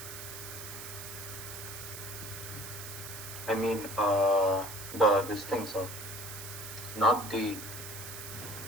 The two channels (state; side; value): noise; right; hiss, 10 dB below the sound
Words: I mean, this thing, sir. Not the